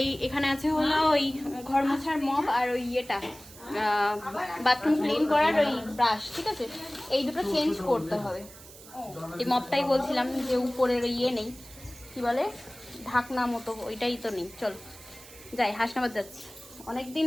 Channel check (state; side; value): noise; right; hiss, 19 dB below the sound